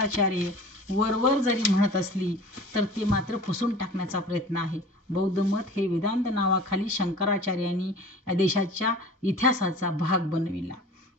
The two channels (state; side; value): normal; both; correlation 0.42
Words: वरवर जरी म्हणत असली तर ते मात्र पुसून टाकण्याचा प्रयत्न आहे. बौद्ध मत हे वेदांत नावाखाली शंकराचार्यांनी या देशाच्या इतिहासाचा भाग बनविला.